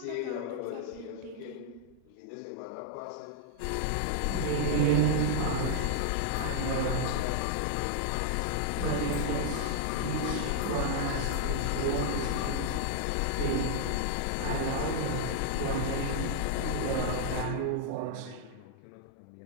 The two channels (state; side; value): different; both; correlation -0.01